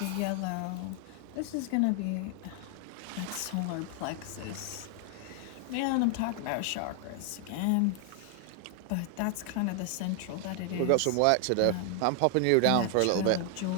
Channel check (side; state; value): both; different; correlation 0.00